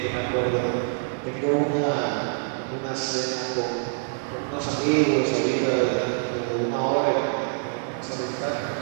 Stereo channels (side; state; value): left; silent; digital silence